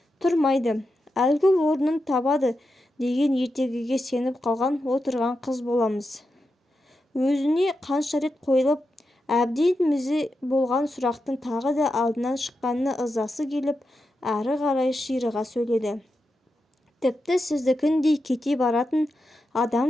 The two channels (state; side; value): normal; both; correlation 0.88